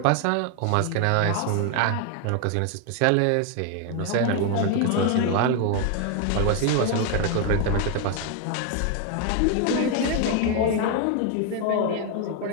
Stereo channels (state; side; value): different; both; correlation 0.01